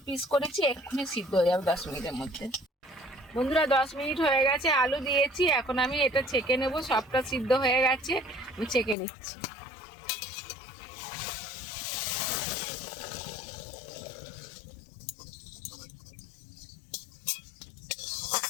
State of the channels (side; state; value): right; drops out; at 9.0 s